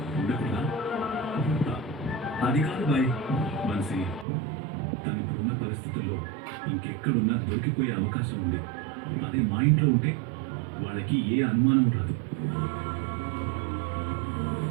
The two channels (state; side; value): drops out; left; at 4.2 s